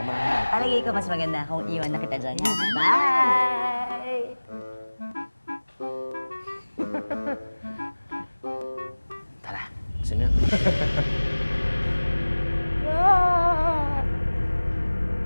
natin. Palagay ko mas maganda kung iwan na kita dyan. Ha? Bye! Tara, sino yun?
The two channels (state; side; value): inverted; both; correlation -1.00